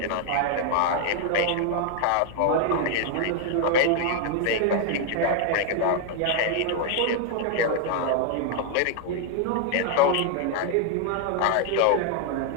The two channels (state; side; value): different; both; correlation 0.00